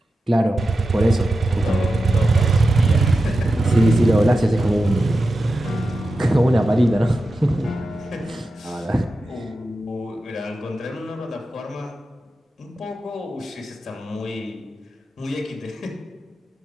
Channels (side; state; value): both; normal; correlation 0.91